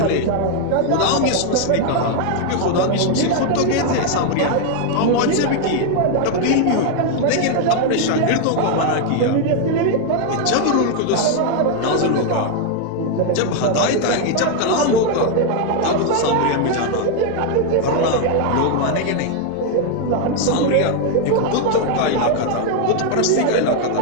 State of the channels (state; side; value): different; both; correlation 0.01